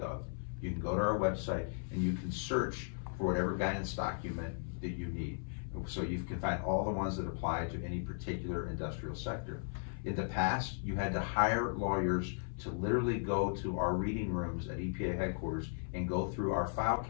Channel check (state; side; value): silent; right; 53 dB below the other